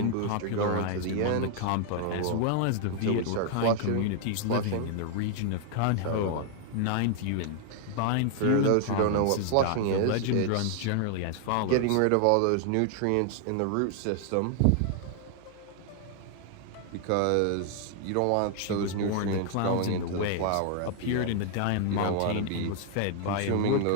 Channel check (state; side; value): different; both; correlation 0.00